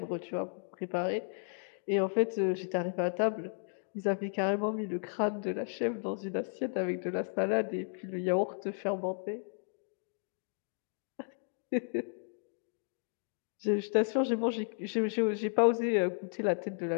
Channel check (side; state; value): right; silent; digital silence